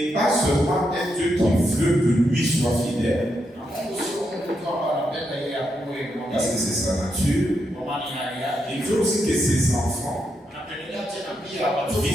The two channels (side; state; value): both; normal; correlation 0.82